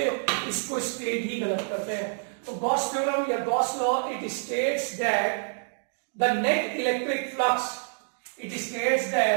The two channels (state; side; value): silent; left; digital silence